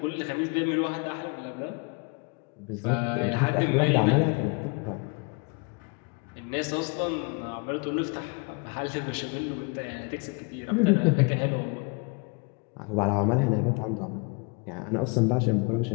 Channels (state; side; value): quieter; right; 32.1 dB